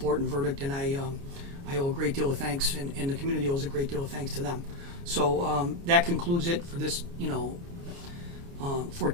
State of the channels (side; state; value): left; late; 29 ms